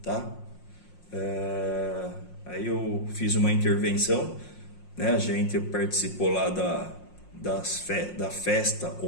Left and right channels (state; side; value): late; right; 5.6 ms